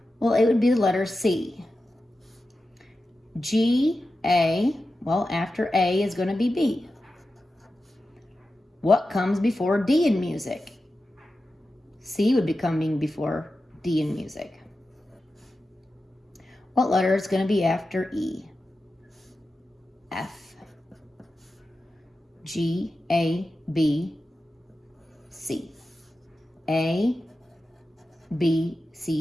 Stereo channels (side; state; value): both; normal; correlation 0.92